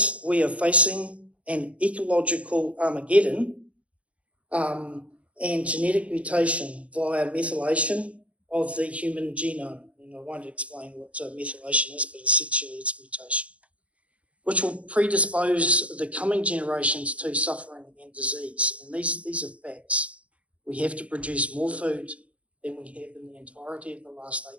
we are facing an ecological Armageddon and genetic mutation via methylation of the human genome. And I won't explain what methylation is, but essentially it's mutation, which will predispose the coming generations to suffering and disease. And these are facts. We have to produce more food than we have in the entirety of the last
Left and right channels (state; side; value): late; left; 0.064 ms